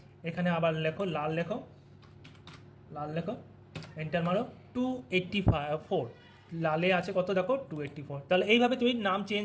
এখানে আবার লাল লেখো, এন্টার মারো 284, লালে আছে কত দেখো 284। তাহলে এইভাবে তুমি নাম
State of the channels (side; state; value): both; identical; correlation 1.00